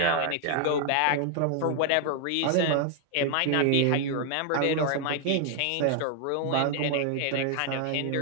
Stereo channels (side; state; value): both; different; correlation 0.00